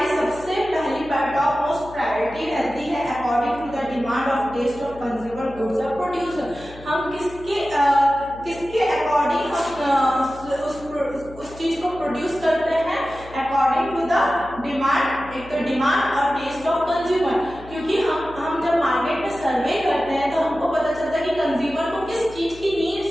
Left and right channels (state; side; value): noise; left; hum, 18 dB below the sound